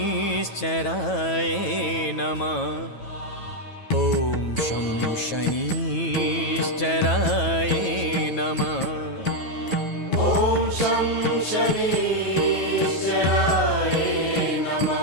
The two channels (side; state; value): right; late; 9.2 ms